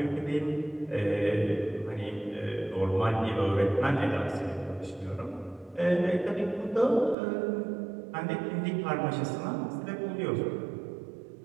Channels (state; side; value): drops out; left; at 7.2 s